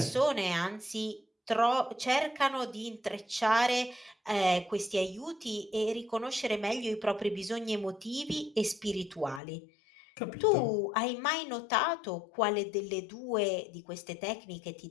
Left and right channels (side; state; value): right; drops out; at 9.4 s